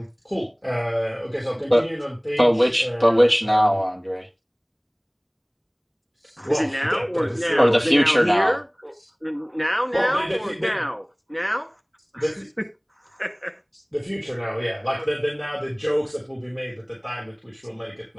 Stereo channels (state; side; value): identical; both; correlation 1.00